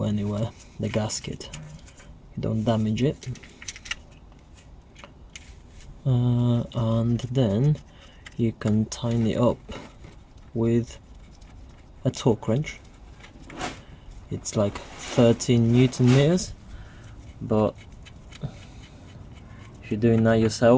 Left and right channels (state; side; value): identical; both; correlation 1.00